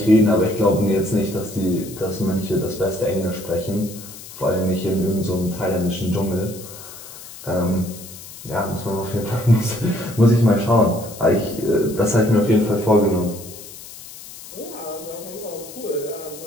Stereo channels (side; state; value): left; noise; hiss, 15 dB below the sound